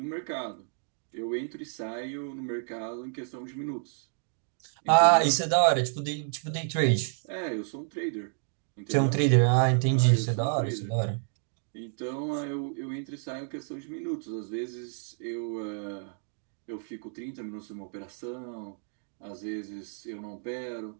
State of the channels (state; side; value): silent; left; digital silence